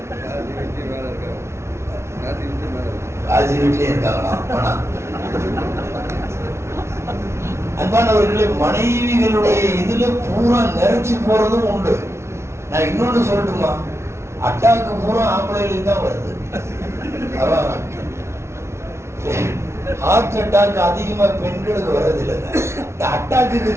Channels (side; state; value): left; late; 0.13 ms